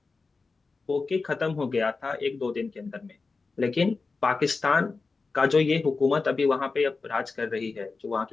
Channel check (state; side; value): quieter; right; 4.1 dB